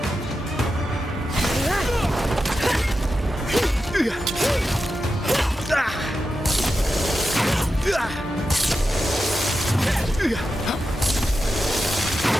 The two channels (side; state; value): both; normal; correlation 0.90